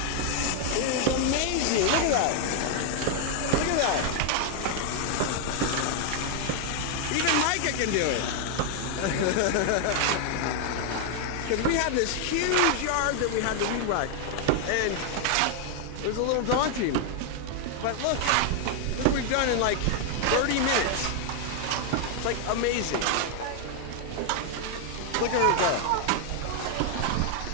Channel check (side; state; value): both; different; correlation 0.00